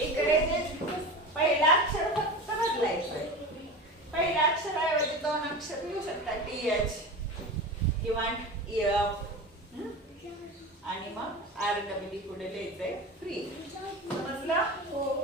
जे पहिला अक्षर फक्त बदलायचं. पहिल्या अक्षराऐवजी दोन अक्षर लिहू शकता. TH किंवा F आणि मग REE पुढे लिहायचंय फ्री. समजलं?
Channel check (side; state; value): both; normal; correlation 0.29